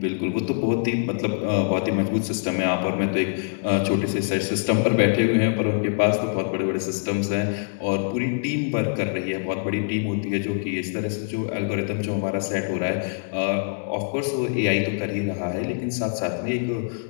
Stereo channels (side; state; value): right; silent; digital silence